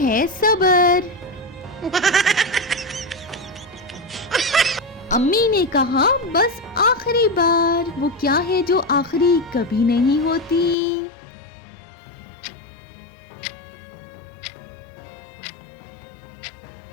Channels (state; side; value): drops out; right; at 10.8 s